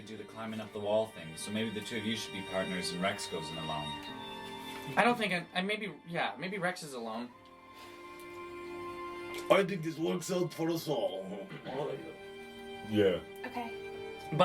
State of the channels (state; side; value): identical; both; correlation 1.00